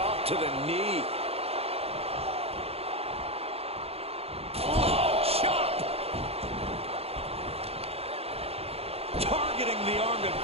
to the knee. Oh, chop. Targeting the arm to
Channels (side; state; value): left; late; 0.29 ms